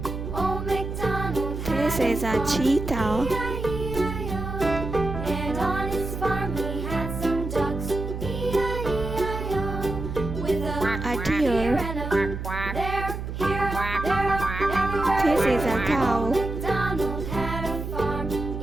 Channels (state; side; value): noise; right; hum, 6 dB below the sound